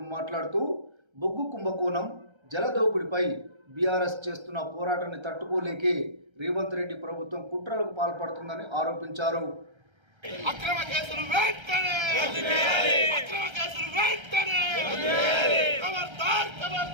మాట్లాడుతూ బొగ్గు కుంభకోణం, జలదోపిడిపై బీఆర్ఎస్ చేస్తున్న పోరాటాన్ని తట్టుకోలేకే రేవంత్ రెడ్డి ప్రభుత్వం కుట్రలకు పాల్పడుతుందని ఆరోపించారు. అక్రమ కేసులు వెంటనే అక్రమ కేసులు వెంటనే ఖబర్దార్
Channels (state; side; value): late; left; 1.3 ms